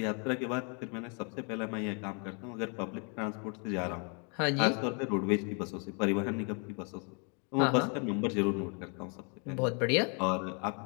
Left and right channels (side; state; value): right; quieter; 37.0 dB